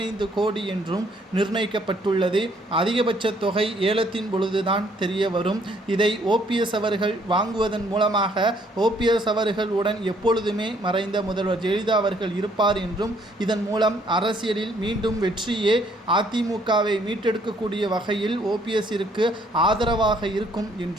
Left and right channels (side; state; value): both; normal; correlation 0.65